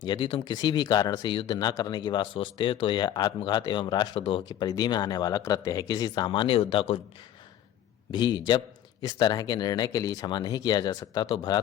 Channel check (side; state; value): right; quieter; 11.3 dB